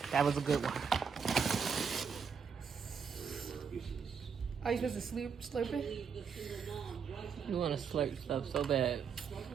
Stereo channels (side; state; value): left; quieter; 6.3 dB